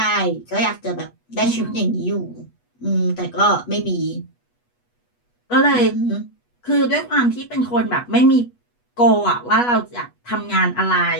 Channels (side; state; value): right; late; 8.2 ms